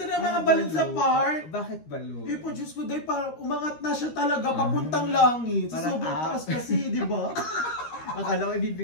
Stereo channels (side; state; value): right; late; 13 ms